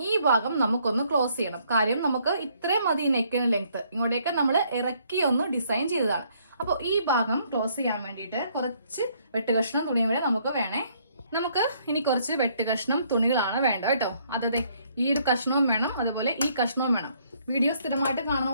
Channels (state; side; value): inverted; both; correlation -0.67